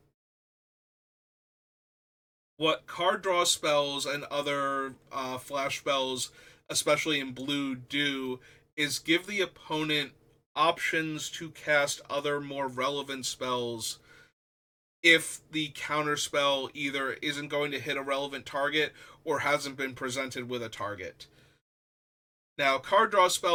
What card draw spells and other flash spells, especially in blue, do is give the opponent options to cast other more relevant spells if the counter spell either isn't going to hit a relevant target or hasn't been presented with a target. Now, card draw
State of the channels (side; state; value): both; identical; correlation 1.00